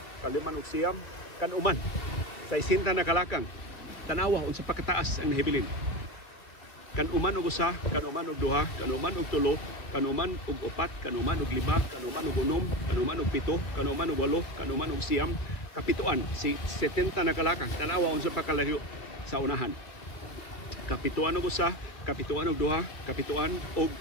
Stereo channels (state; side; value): late; right; 2.1 ms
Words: kaliman og siyam, kanuman. Sa 60 na kalakang. Tanawa unsa pa kataas ang nahibilin. Kanuman og usa, kanuman og duha, kanuman og tulo, kanuman og upat, kanuman og lima, kanuman og unom, kanuman og pito, kanuman og walo, kanuman og siyam, kapituan. Si 70 na kalakang. Tanawa unsa pa kalayo sa unahan. Kapituan og usa, kapituan og duha, kapituan og